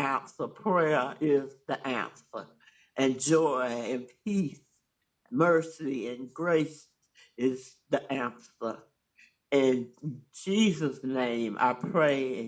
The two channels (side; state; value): both; identical; correlation 1.00